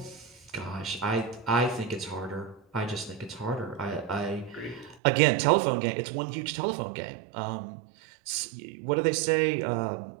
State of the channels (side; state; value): left; drops out; at 5.0 s